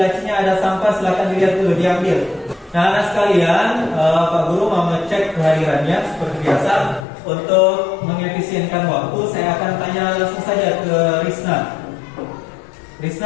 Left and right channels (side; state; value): right; drops out; at 7.1 s